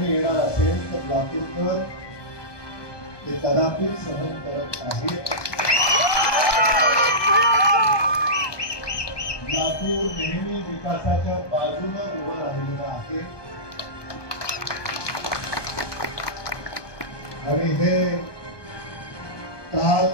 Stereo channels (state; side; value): late; right; 1.2 ms